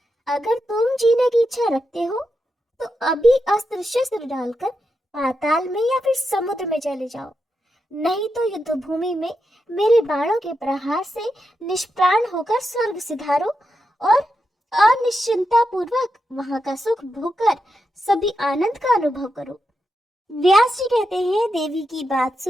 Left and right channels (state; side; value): normal; both; correlation 0.86